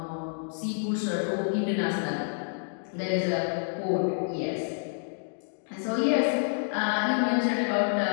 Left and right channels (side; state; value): right; silent; digital silence